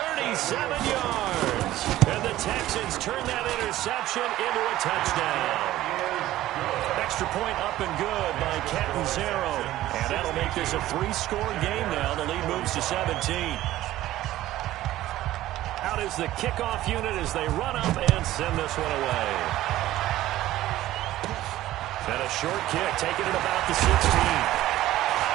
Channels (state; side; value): quieter; left; 14.9 dB